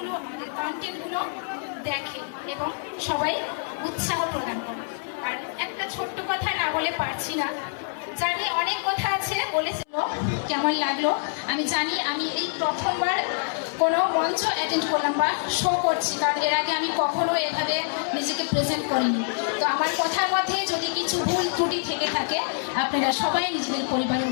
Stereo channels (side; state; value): right; silent; 61 dB below the other